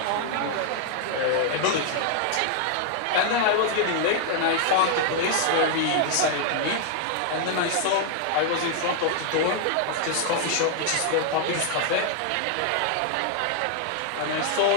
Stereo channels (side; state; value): both; different; correlation 0.00